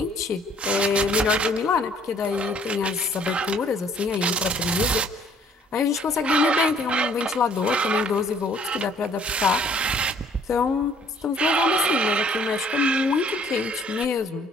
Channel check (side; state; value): both; normal; correlation 0.60